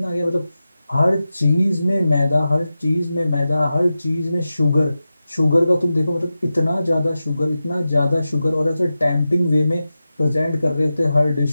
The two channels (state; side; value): inverted; both; correlation -0.93